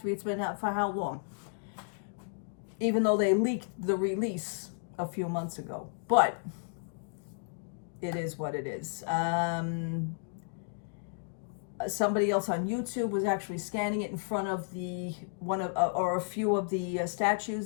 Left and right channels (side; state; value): right; silent; digital silence